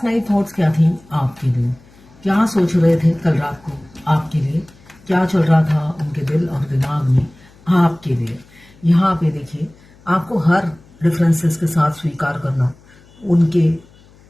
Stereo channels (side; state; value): left; noise; hum, 27 dB below the sound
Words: नाइट थॉट्स क्या थी आपके लिए। क्या सोच रहे थे कल रात को आपके लिए, क्या चल रहा था उनके दिल और दिमाग में आपके लिए। यहाँ पे देखिए, आपको हर डिफरेंसेस के साथ स्वीकार करना उनके